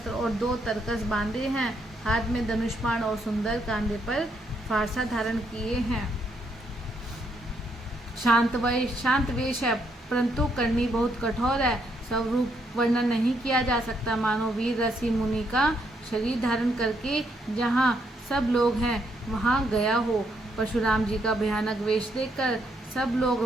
और 2 तरकस बांधे हैं, हाथ में धनुष्बाण और सुंदर कांधे पर फारसा धारण किए हैं। शांत वेश है, परंतु करनी बहुत कठोर है। स्वरूप वर्णन नहीं किया जा सकता, मानो वीर ऋषि मुनि का शरीर धारण करके जहाँ सब लोग हैं वहाँ गया हो। परशुराम जी का भयानक वेश देखकर सब लोग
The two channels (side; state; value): both; normal; correlation 0.75